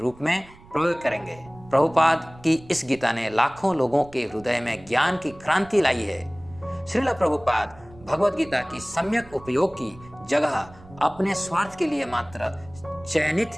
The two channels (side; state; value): right; noise; rumble, 22 dB below the sound